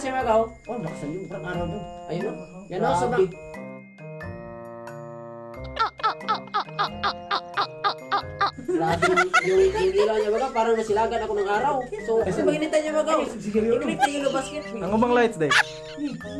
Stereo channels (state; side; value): identical; both; correlation 1.00